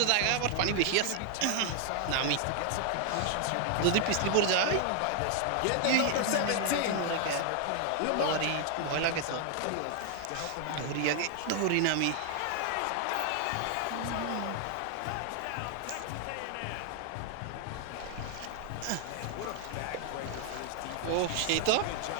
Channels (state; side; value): different; both; correlation 0.00